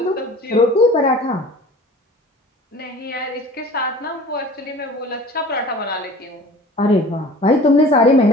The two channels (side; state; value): both; normal; correlation 0.43